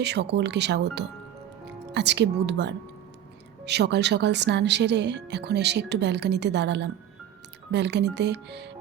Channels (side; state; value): left; quieter; 10.5 dB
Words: সকলকে স্বাগত। আজকে বুধবার, সকাল সকাল স্নান সেরে এখন এসে একটু ব্যালকনিতে দাঁড়ালাম। ব্যালকনিতে